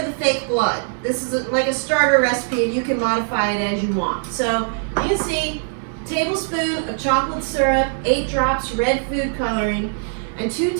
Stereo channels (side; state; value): left; silent; 65 dB below the other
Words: the fake blood. This is like a starter recipe, and you can modify it as you want. So you can see tablespoon of chocolate syrup, 8 drops red food coloring, and 2